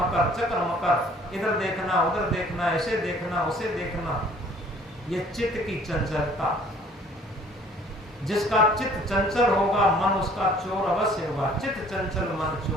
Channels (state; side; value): normal; both; correlation 0.55